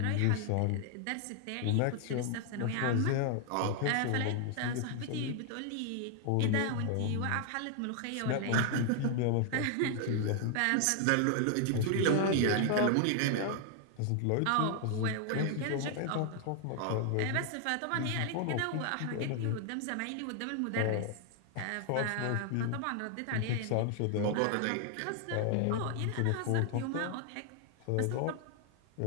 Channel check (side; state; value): both; different; correlation 0.00